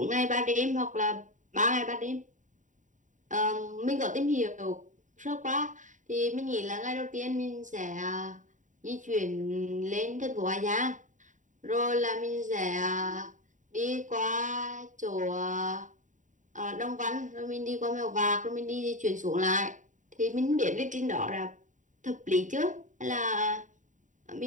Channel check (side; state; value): left; late; 0.36 ms